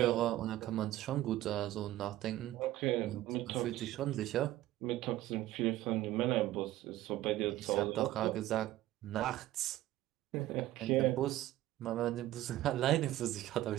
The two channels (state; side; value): quieter; left; 15.0 dB